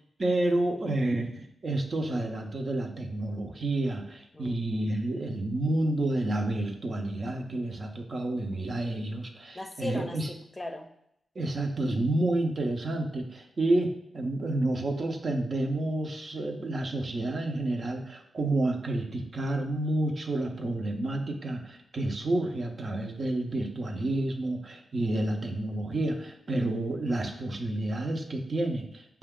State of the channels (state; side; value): normal; both; correlation 0.89